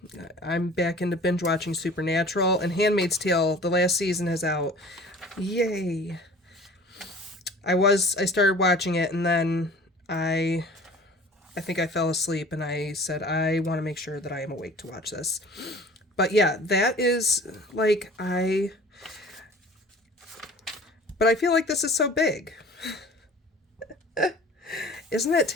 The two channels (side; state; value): both; normal; correlation 0.45